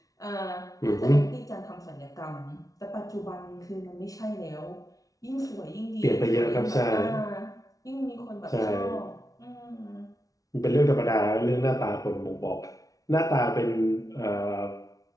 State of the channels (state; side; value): late; right; 0.17 ms